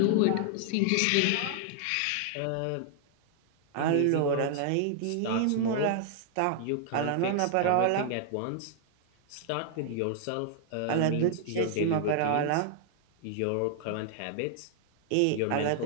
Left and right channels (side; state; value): both; different; correlation -0.01